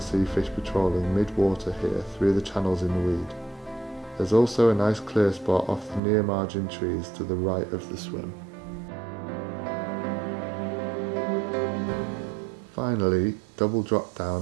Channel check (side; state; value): left; drops out; at 6.0 s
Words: see fish patrolling mid-water here through the channels in the weed. There's also a nice clear spot off the near margin trees to the right of the swim. Finally, double drop